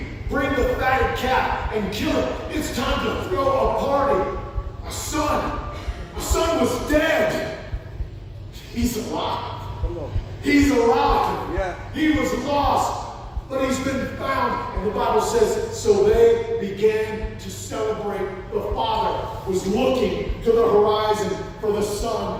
Bring the fatted calf and kill it. It's time to throw a party. My son was dead. He's alive. He's alive. Yeah. He was lost, but he's been found. And the Bible says, so they began to celebrate. The father was looking to the horizon for the son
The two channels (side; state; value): both; identical; correlation 1.00